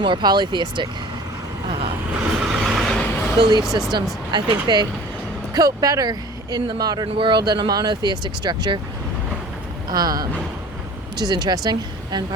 polytheistic belief systems. I think they cope better in the modern world than a monotheistic structure, which is interesting, and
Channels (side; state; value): both; normal; correlation 0.45